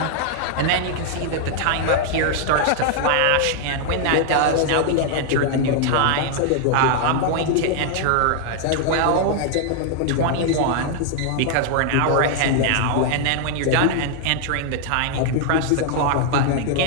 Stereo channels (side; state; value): both; different; correlation 0.00